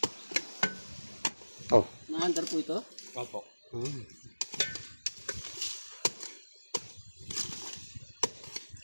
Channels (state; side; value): inverted; both; correlation -1.00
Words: Oh. Mahandar po ito? Opo.